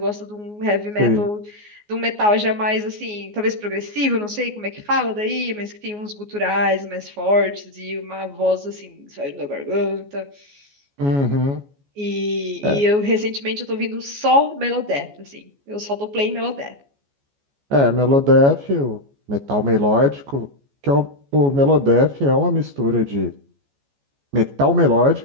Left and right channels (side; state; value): left; late; 14 ms